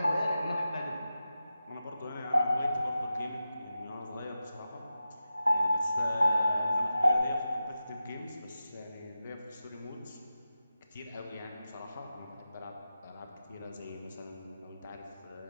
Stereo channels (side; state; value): both; inverted; correlation -0.92